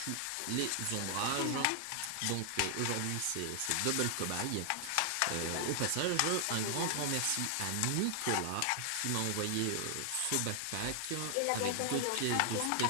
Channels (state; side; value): different; both; correlation 0.00